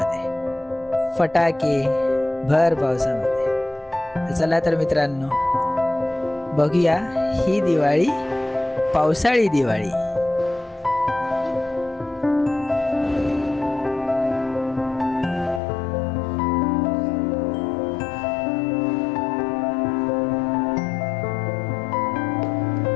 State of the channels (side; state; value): right; drops out; at 15.6 s